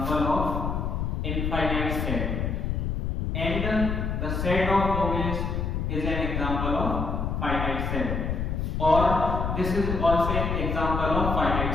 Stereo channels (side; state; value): left; noise; rumble, 1 dB below the sound